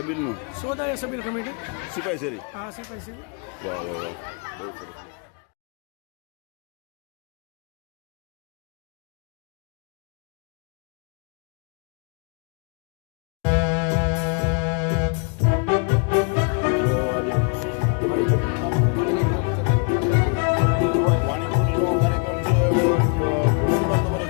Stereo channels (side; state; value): right; quieter; 37.1 dB